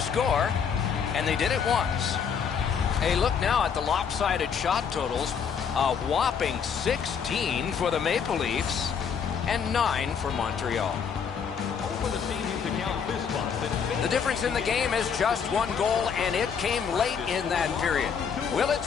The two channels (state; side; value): quieter; right; 6.9 dB